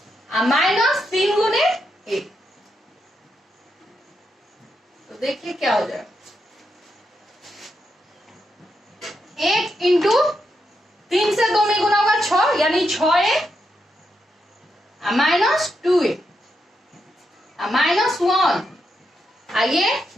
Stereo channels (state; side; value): normal; both; correlation 0.83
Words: a माइनस 3 गुने a। तो देखिए क्या हो जाएगा, 1 इंटू 3 से 2 में गुना होगा 6, यानी 6a माइनस 2a माइनस 1, ये